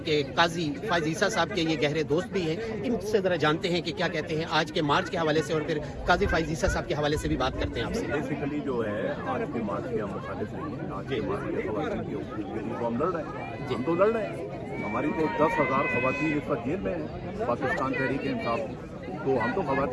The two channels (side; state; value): both; identical; correlation 1.00